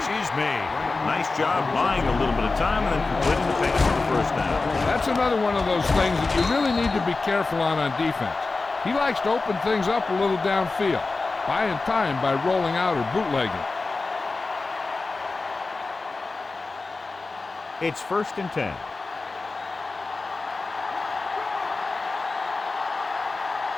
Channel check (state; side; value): quieter; right; 3.7 dB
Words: is made. Nice job buying a little bit of time and then completing the pass for the first down. That's another one of those things that you really need to be careful on defense. He likes to open things up a little downfield, buying time by rolling out or bootlegging. It's 1st and 10.